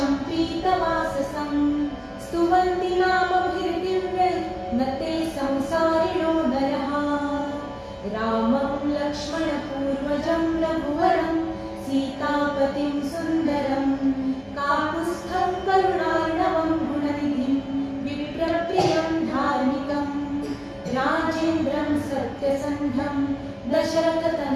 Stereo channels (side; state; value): both; identical; correlation 1.00